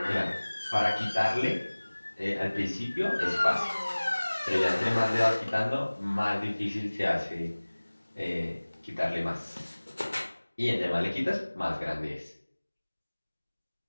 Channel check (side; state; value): both; inverted; correlation -1.00